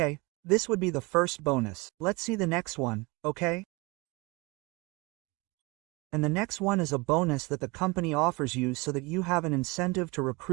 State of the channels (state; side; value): quieter; left; 25.3 dB